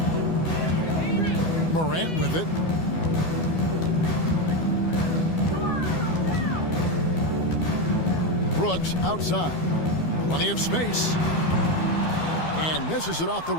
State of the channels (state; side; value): late; right; 12 ms